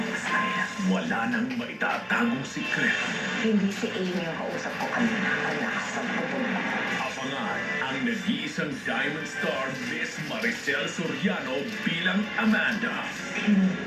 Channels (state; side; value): identical; both; correlation 1.00